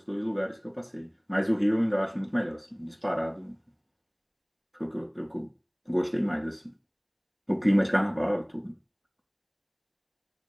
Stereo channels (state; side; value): identical; both; correlation 1.00